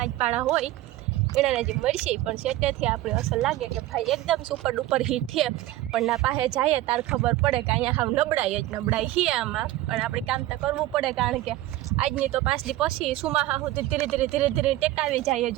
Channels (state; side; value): quieter; left; 15.8 dB